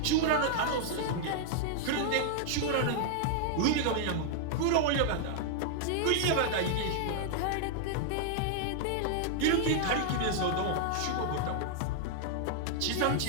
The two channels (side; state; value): both; different; correlation -0.01